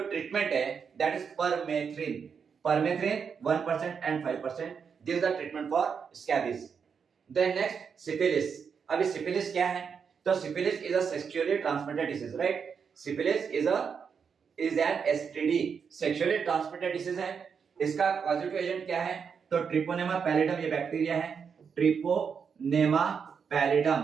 है, that is permethrin. Permethrin 1% and 5%, this is the treatment for scabies. Then next, syphilis. अभी syphilis क्या है? तो syphilis is a sexually transmitted disease, right? Syphilis is an STD, sexually transmitted disease है। इसका पॉजिटिव एजेंट क्या है? तो treponema pallidum ये बैक्टीरिया है, ट्रिपोनेमा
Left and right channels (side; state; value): left; quieter; 6.4 dB